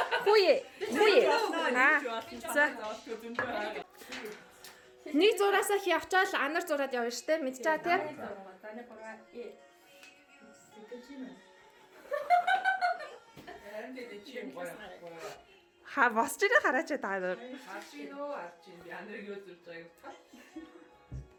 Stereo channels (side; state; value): both; identical; correlation 1.00